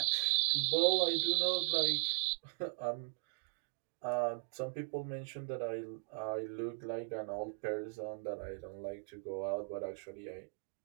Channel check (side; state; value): left; silent; digital silence